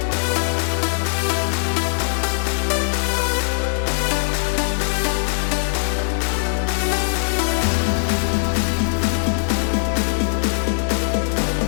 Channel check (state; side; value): silent; right; digital silence